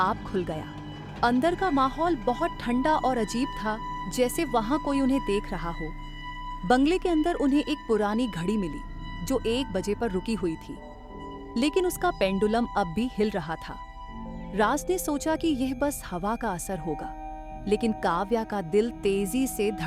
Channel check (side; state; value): both; identical; correlation 1.00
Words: खुल गया। अंदर का माहौल बहुत ठंडा और अजीब था, जैसे वहां कोई उन्हें देख रहा हो। बंगले के अंदर उन्हें एक पुरानी घड़ी मिली जो 1 बजे पर रुकी हुई थी, लेकिन उसका पेंडुलम अब भी हिल रहा था। राज ने सोचा कि यह बस हवा का असर होगा, लेकिन काव्या का दिल तेजी से